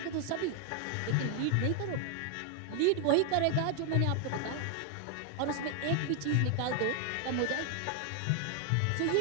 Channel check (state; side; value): different; both; correlation 0.00